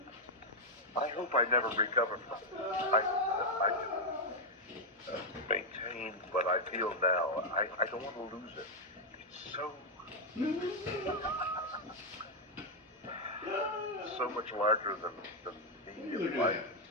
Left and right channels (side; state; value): both; normal; correlation 0.00